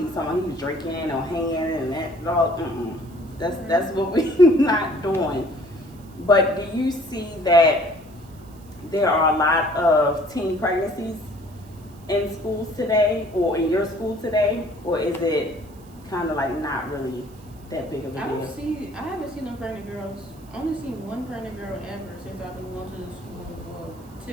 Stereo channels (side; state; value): right; noise; hiss, 27 dB below the sound